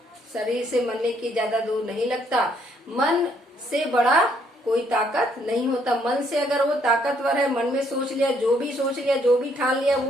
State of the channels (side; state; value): both; normal; correlation 0.69